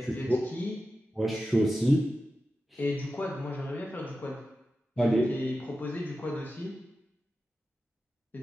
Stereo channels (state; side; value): normal; both; correlation 0.92